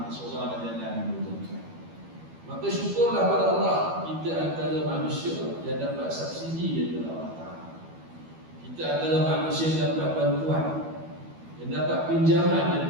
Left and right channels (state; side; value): late; left; 12 ms